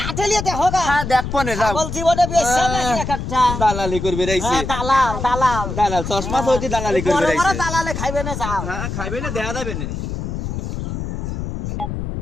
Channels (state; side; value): noise; left; rumble, 5 dB below the sound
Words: আটেলিয়া দেখো গা। হ্যাঁ দেখবো না, যাও। ছাগল জীবনে বেচছে নাকি একটা? দালালি করবে রাইছে। হ্যাঁ, দালাল দালাল দালাল চশমা তো হইছে দালালি বড় করবে বড় রাইছে। দালালে খাইবে না যাও। হ্যাঁ খাইবে না, দেখা যাবে না।